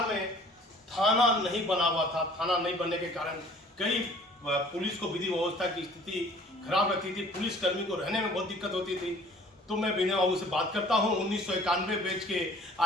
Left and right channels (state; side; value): normal; both; correlation 0.52